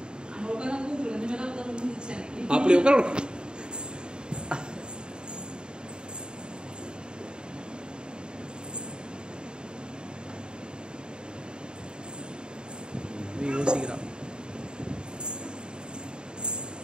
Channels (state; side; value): late; left; 0.049 ms